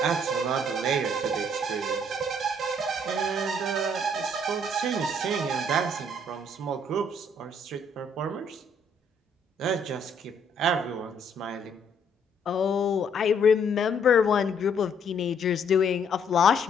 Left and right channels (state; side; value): normal; both; correlation 0.66